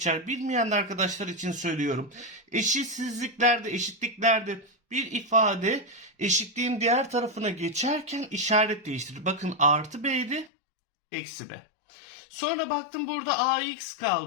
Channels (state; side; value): drops out; right; at 10.5 s